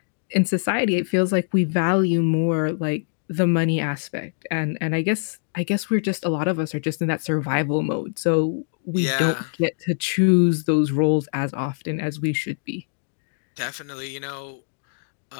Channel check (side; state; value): right; silent; digital silence